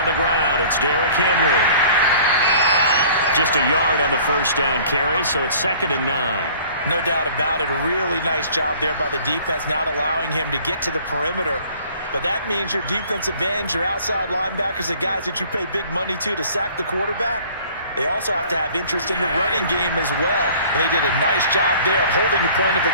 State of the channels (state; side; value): inverted; both; correlation -0.51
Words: the ground. It's Derrick Henry. Just a yard on the first down carry, so it's 2nd and 9. No doubt about it. A really nice job there by the defense, not allowing him to get to the perimeter. But that means your defensive ends, your outside linebackers, the guys that you pay big money to sack the quarterback, they also have to have interest in the running game as well. And they did a nice job there of holding the point of